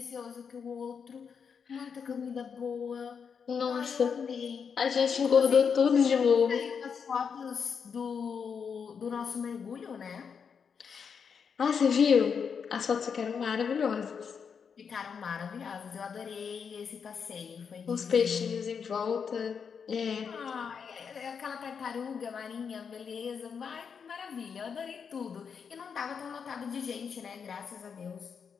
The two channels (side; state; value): right; quieter; 6.5 dB